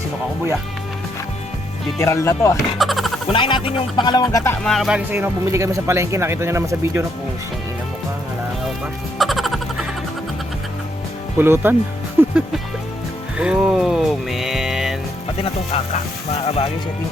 ako buya. Literal na to ah. Unahin natin yung pangalawang gata mga kabagis. Ayun, bumili kami sa palengke. Nakita nyo naman sa video na pusong ina mo ka. Halangaw pa. Pulutan. Oh man. Pati na tong kaka mga kabagis. Ito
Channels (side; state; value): both; normal; correlation 0.75